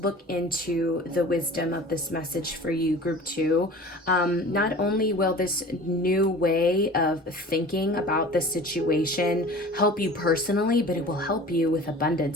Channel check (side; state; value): both; normal; correlation 0.41